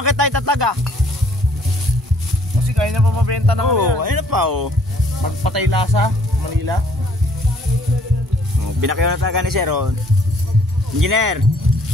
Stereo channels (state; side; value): normal; both; correlation 0.62